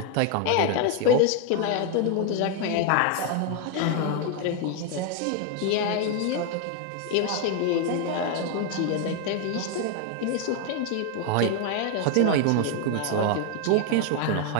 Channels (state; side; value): different; both; correlation 0.01